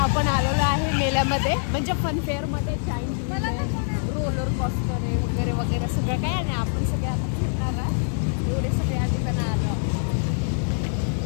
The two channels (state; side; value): silent; right; digital silence